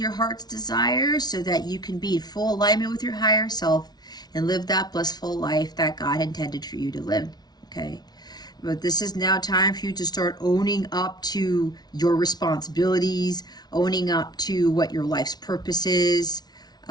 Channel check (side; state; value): right; late; 0.19 ms